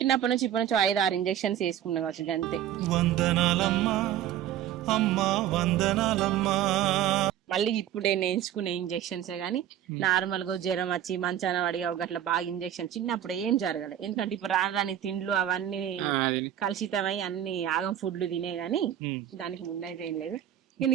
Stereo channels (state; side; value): quieter; left; 11.0 dB